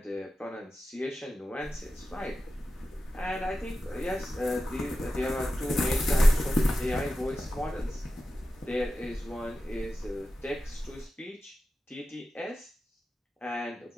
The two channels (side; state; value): both; normal; correlation 0.93